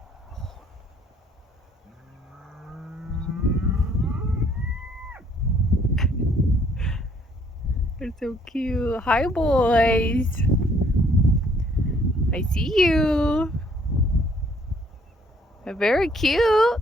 They're so cute. Hi, boys. I see you. They're very cute.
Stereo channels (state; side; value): normal; both; correlation 0.63